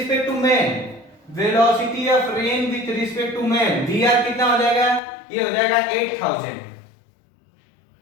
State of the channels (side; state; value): right; drops out; at 5.0 s